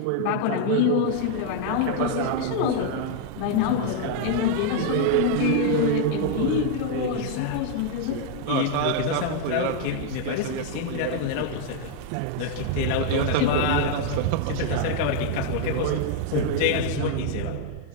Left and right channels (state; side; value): different; both; correlation 0.00